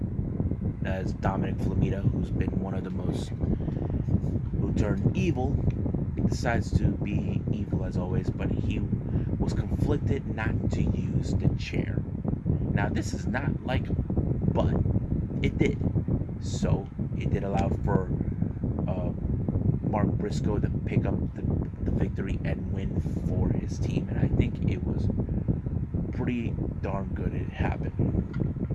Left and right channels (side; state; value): both; identical; correlation 1.00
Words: as Dominic Flamita, who's been one of the most, who turned evil, decides to be evil as always, but he was conflicted not to use the chair. Now, this is not like him, but it did. So, it did allow for Mark Briscoe to pick up the victory and win for his team. And I think it was pretty darn good it happened.